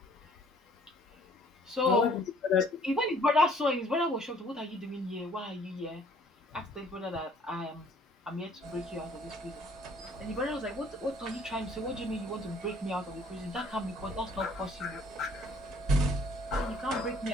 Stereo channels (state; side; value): normal; both; correlation 0.59